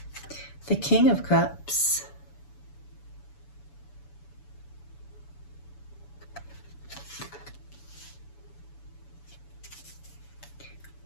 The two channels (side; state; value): right; late; 7.0 ms